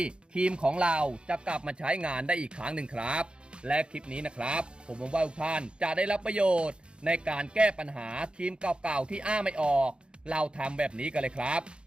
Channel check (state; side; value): late; left; 0.054 ms